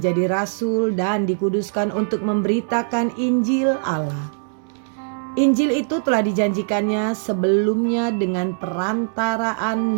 rasul dan dikuduskan untuk memberitakan Injil Allah. Injil itu telah dijanjikannya sebelumnya dengan perantaraan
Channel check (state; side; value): silent; left; digital silence